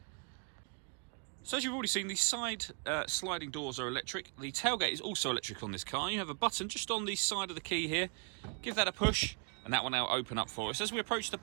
So as you've already seen, the side sliding doors are electric. The tailgate is also electric on this car. You have a button just on the side of the key here. Give that a push, and that will now open up for us. As we approach the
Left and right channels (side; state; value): left; quieter; 39.7 dB